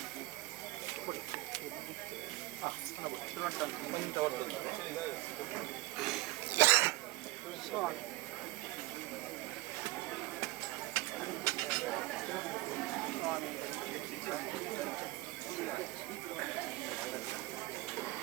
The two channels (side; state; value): left; quieter; 21.0 dB